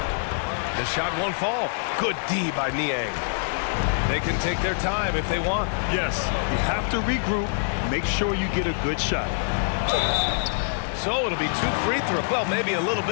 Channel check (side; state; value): right; silent; digital silence